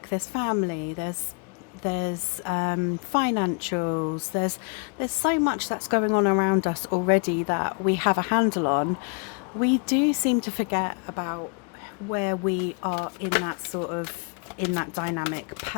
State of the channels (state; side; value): quieter; right; 37.6 dB